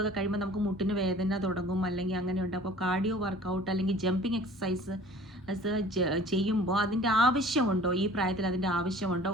ഒക്കെ കഴിയുമ്പോൾ നമുക്ക് മുട്ടിന് വേദന തുടങ്ങും അല്ലെങ്കിൽ അങ്ങനെയുണ്ട്. അപ്പോൾ കാർഡിയോ വർക്കൗട്ട് അല്ലെങ്കിൽ ജമ്പിങ് എക്സസൈസ് ചെയ്യുമ്പോൾ അതിൻ്റെ ആവശ്യമുണ്ടോ, ഈ പ്രായത്തിൽ അതിൻ്റെ ആവശ്യമുണ്ടോ,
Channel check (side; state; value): both; normal; correlation 0.47